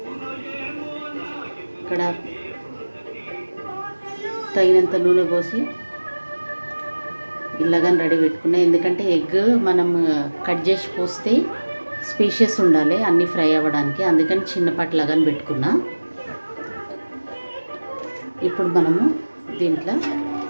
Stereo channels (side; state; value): both; inverted; correlation -1.00